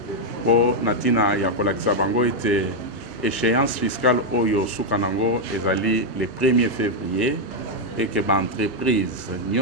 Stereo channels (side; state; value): both; normal; correlation 0.00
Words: po na ntina ya kolakisa bango ete échéance fiscale oyo suka nango ezali le 1er février et que l'entreprise